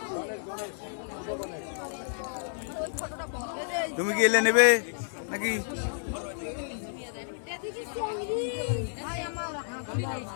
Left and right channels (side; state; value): right; silent; digital silence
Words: তুমি কি এলে নেবে নাকি?